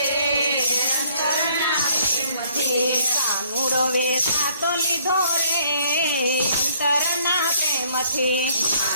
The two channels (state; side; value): inverted; both; correlation -0.62